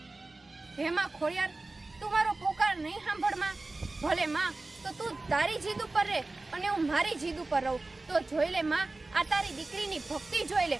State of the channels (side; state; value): left; quieter; 3.2 dB